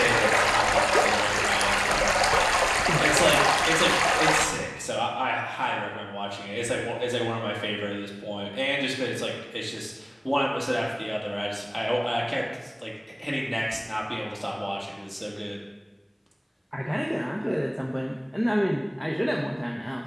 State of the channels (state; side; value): identical; both; correlation 1.00